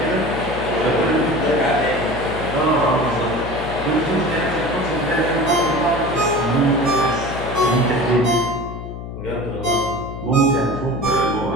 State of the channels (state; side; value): noise; left; hum, 9 dB below the sound